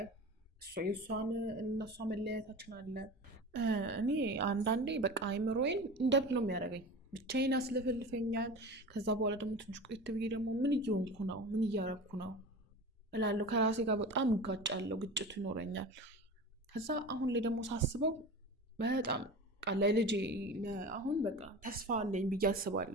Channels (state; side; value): normal; both; correlation 0.33